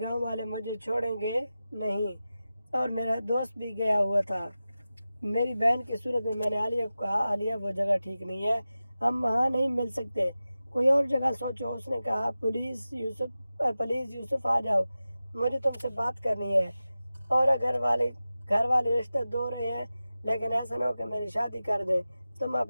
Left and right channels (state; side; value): inverted; both; correlation -0.94